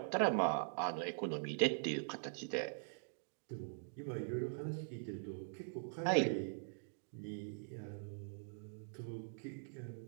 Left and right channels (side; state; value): left; silent; digital silence